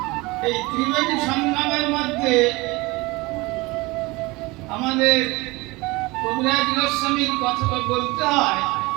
এই ত্রিবেণী সংগ্রামের মধ্যে আমাদের কবিরাজ গোস্বামীর কথা বলতে হয়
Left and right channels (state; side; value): quieter; left; 23.0 dB